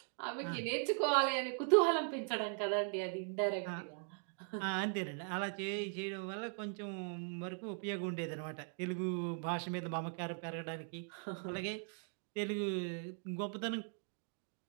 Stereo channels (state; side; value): silent; left; 51 dB below the other